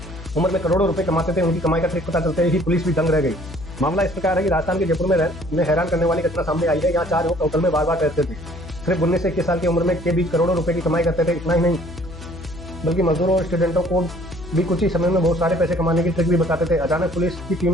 में करोड़ों रुपए कमाते थे। उनकी कमाई का ट्रिक पता चलते ही पुलिस भी दंग रह गई। मामला इस प्रकार है कि राजस्थान के जयपुर में हैरान करने वाली घटना सामने आई है। यहाँ 4 युवक होटल में बार बार ठहरते थे। सिर्फ 19 से 21 साल की उम्र में के बीच करोड़ों रुपए की कमाई करते थे। इतना ही नहीं, बल्कि मजदूरों और स्टूडेंटों को भी कुछ ही समय में बहुत सारे पैसे कमाने की ट्रिक भी बताते थे। अचानक पुलिस की टीम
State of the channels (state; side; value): noise; left; hum, 14 dB below the sound